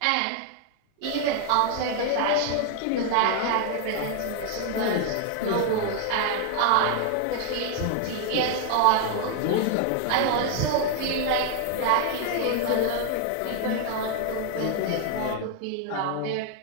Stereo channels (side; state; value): both; different; correlation 0.00